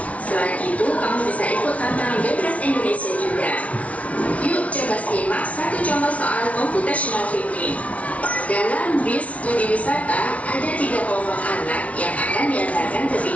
Selain itu, kamu bisa ikut tantangan Bebas Indonesia juga. Yuk coba simak satu contoh soal computational thinking. Dalam bis studi wisata, ada 3 kelompok anak yang akan diantarkan ke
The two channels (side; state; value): right; late; 0.066 ms